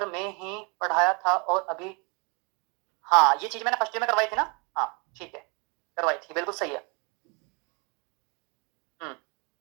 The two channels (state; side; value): quieter; left; 32.2 dB